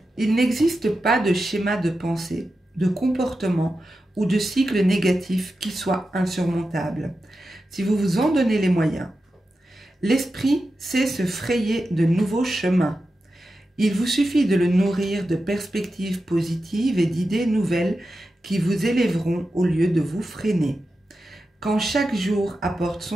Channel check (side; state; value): both; normal; correlation 0.91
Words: il n'existe pas de schéma de pensée, de comportement ou de cycle négatif qui soit insurmontable, si vous vous en donnez les moyens. L'esprit sait se frayer de nouveaux chemins. Il vous suffit de le nourrir de perspectives positives et d'idées nouvelles qui vous élèveront au lieu de vous freiner. Quand chaque jour apporte